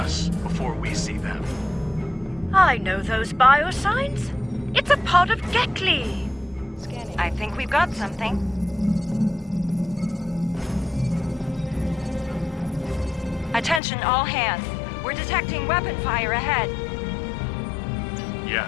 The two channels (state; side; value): drops out; right; at 13.8 s